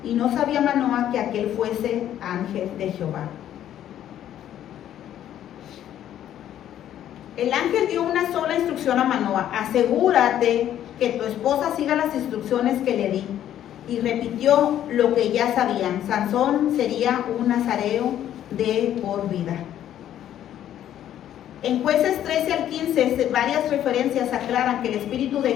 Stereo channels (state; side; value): quieter; right; 11.2 dB